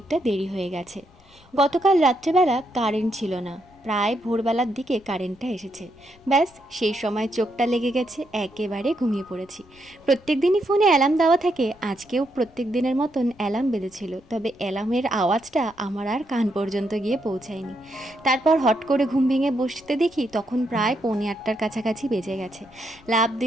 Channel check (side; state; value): left; noise; rumble, 27 dB below the sound